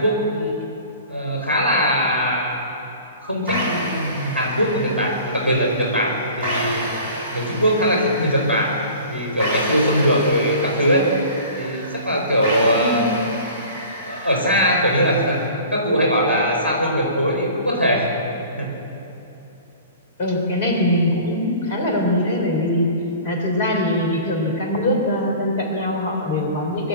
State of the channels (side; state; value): both; inverted; correlation -0.43